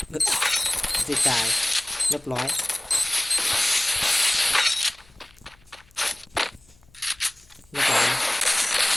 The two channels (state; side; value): noise; left; hum, 30 dB below the sound